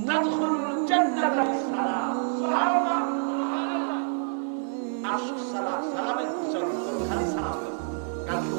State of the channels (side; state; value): left; silent; digital silence